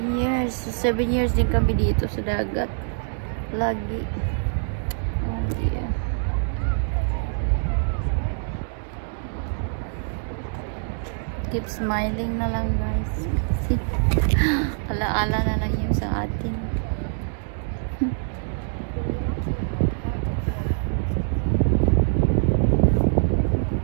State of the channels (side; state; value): left; silent; digital silence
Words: years. 7 years din kami dito sa dagat. Lagi. Oh dear. Keep smiling na lang, guys. Alaala na lang yung sa atin.